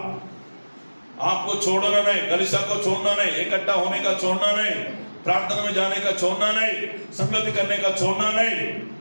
आपको छोड़ना नहीं, कलीसिया को छोड़ना नहीं, इकट्ठा होने का छोड़ना नहीं, प्रार्थना में जाने का छोड़ना नहीं, संगति करने का छोड़ना नहीं।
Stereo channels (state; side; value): inverted; both; correlation -1.00